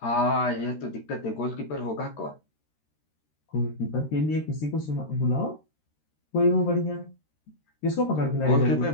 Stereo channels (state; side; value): late; right; 13 ms